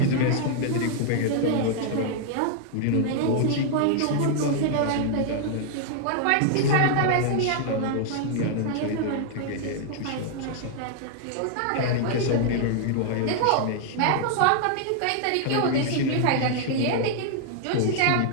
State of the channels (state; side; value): different; both; correlation 0.00